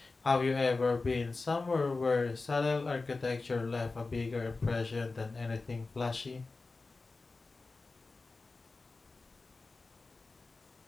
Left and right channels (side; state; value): right; quieter; 3.7 dB